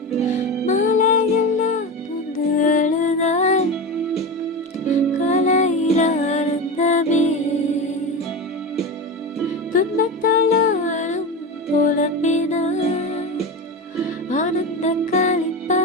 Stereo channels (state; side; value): normal; both; correlation 0.22